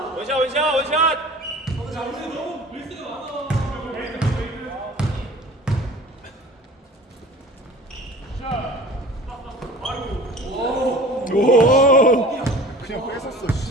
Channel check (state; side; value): normal; both; correlation 0.42